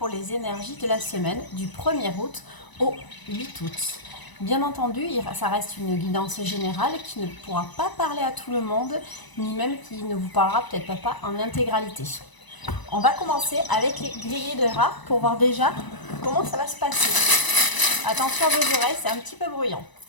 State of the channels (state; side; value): late; right; 1.0 ms